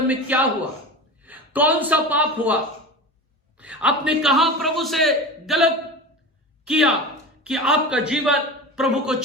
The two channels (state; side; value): normal; both; correlation 0.30